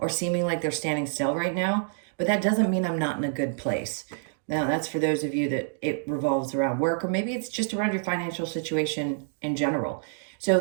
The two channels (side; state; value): left; silent; digital silence